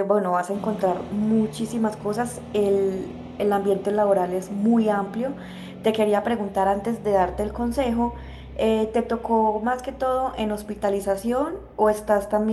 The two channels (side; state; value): both; identical; correlation 1.00